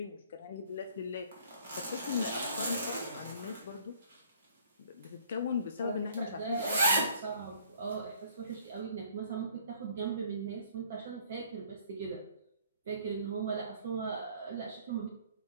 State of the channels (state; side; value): inverted; both; correlation -0.57